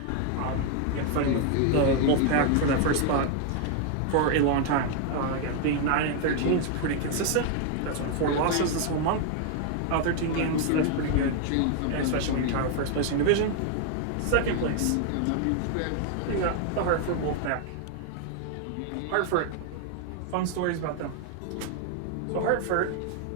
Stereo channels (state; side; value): different; both; correlation 0.01